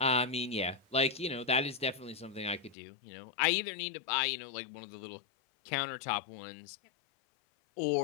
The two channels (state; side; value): drops out; right; at 2.8 s